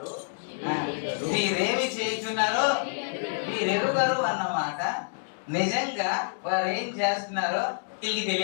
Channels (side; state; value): right; silent; 59 dB below the other